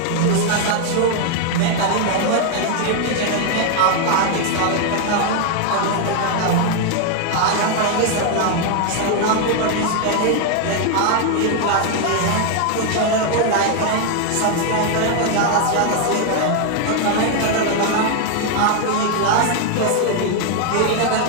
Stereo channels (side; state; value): both; different; correlation 0.00